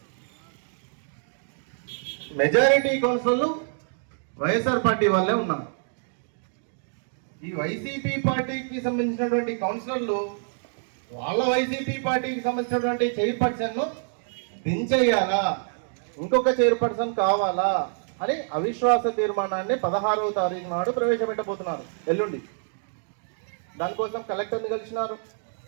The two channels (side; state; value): left; silent; digital silence